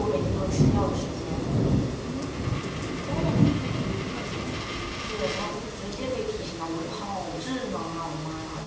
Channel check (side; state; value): both; identical; correlation 1.00